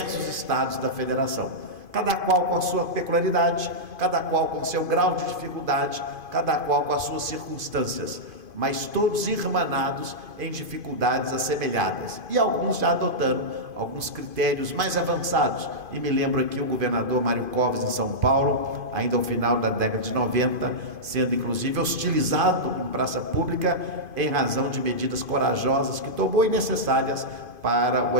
estados da federação, cada qual com a sua peculiaridade, cada qual com seu grau de dificuldade, cada qual com as suas circunstâncias. mas todos irmanados em dificuldades assemelhadas, e alguns já adotando alguns critérios mais avançados. E me lembro aqui o governador Mário Covas, em São Paulo, ainda ao final da década de 90, sendo inclusive hostilizado em praça pública em razão de medidas corajosas que tomou e necessárias para o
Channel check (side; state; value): left; late; 2.5 ms